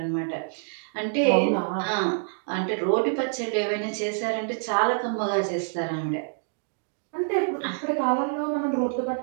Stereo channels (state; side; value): silent; left; digital silence